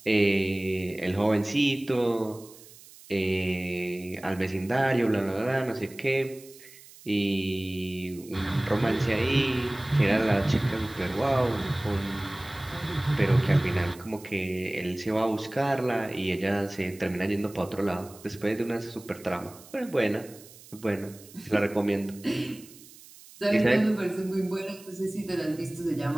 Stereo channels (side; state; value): right; noise; hiss, 21 dB below the sound